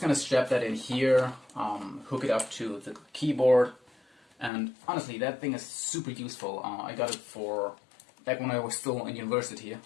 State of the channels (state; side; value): drops out; right; at 4.5 s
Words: gonna strap that in here, hook it up to the keyboard, and honestly, that thing is super useful. I got it for back when I was still in university,